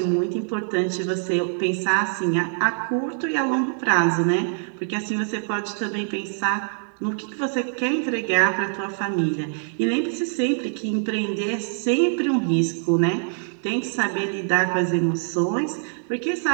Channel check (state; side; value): silent; left; digital silence